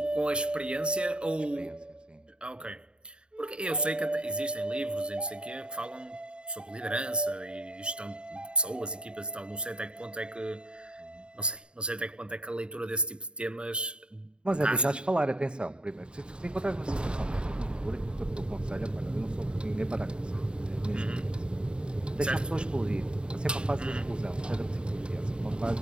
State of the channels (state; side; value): late; left; 0.051 ms